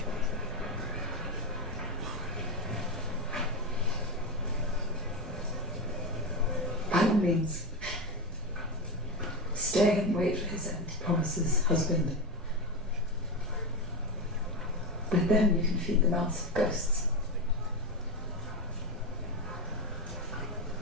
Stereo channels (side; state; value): both; normal; correlation 0.14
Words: By all means, stay and wait for his end promises, husband. But then you can feed the mouths of ghosts.